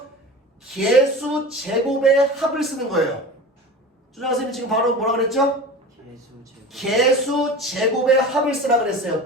개수 제곱의 합을 쓰는 거예요. 조정아 선생님 지금 바로 뭐라 그랬죠? 개수 제곱의 합을 쓰라 그랬어요.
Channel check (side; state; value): both; normal; correlation 0.33